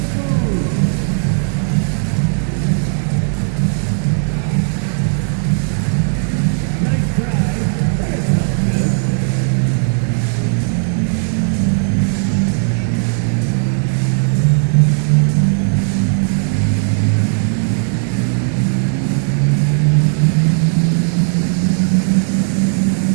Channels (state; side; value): silent; left; 69 dB below the other